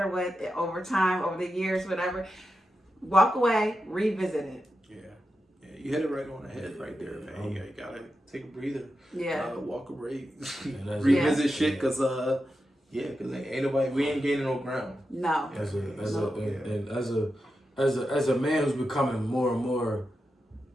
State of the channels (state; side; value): normal; both; correlation 0.89